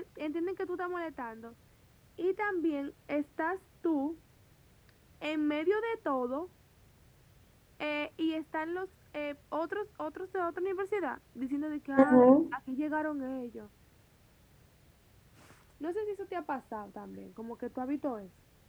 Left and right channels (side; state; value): both; identical; correlation 1.00